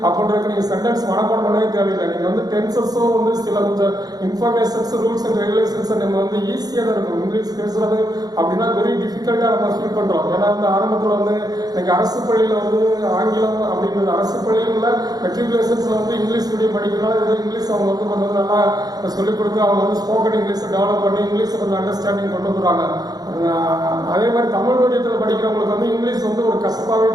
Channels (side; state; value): left; late; 0.19 ms